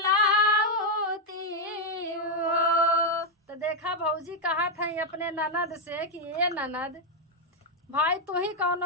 त्यू हो। तो देखा भौजी कहा था अपने ननद से कि ये ननद भाई तू ही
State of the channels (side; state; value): both; normal; correlation 0.01